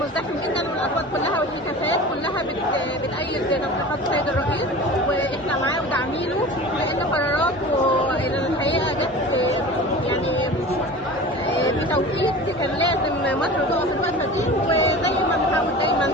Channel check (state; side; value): normal; both; correlation 0.36